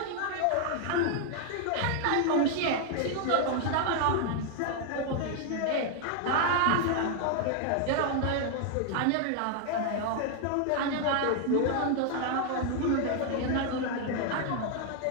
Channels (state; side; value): different; both; correlation 0.00